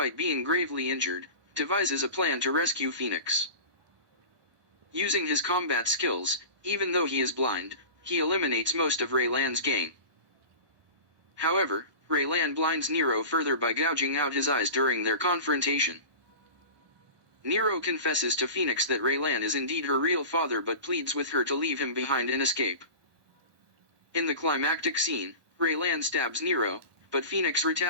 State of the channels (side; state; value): left; late; 1.2 ms